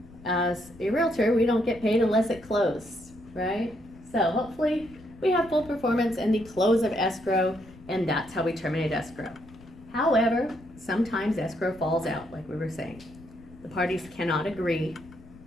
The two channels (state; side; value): noise; left; rumble, 21 dB below the sound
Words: as a realtor, we don't get paid unless it closed, right? So hopefully we have full performance and the close of escrow, and that's how we terminate escrow. However, sometimes escrow falls out, like we were saying. The parties cannot agree,